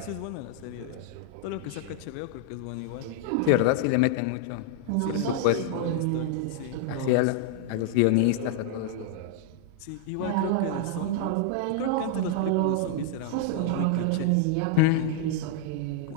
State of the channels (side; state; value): both; different; correlation -0.01